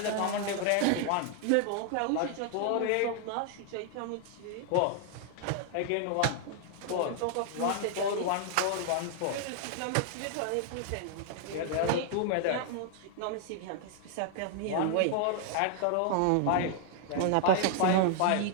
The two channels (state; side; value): different; both; correlation 0.00